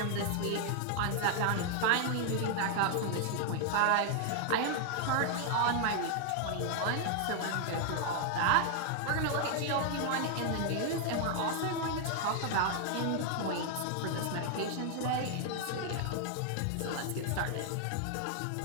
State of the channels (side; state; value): both; different; correlation 0.00